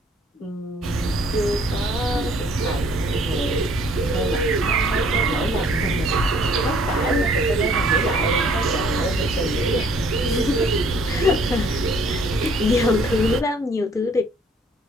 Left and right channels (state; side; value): normal; both; correlation 0.59